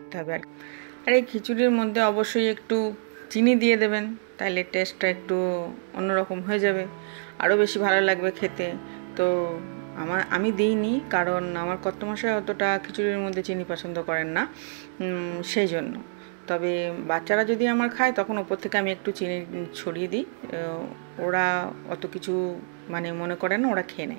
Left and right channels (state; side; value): silent; left; 61 dB below the other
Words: হবে। আর এই খিচুড়ির মধ্যে অবশ্যই একটু চিনি দিয়ে দেবেন, তাহলে টেস্টটা একটু অন্যরকম হয়ে যাবে, আরও বেশি ভালো লাগবে খেতে। তো আমি দিইনি, কারণ আমার কর্তামশাই অতটা খিচুড়ির মধ্যে চিনি পছন্দ করেন না, সেই জন্য। তবে বাচ্চারা যদি আমার খায় তখন ওপর থেকে আমি একটু চিনি ছড়িয়ে দিই, ওরা অত কিছু মানে মনে করে না, ওরা খেয়ে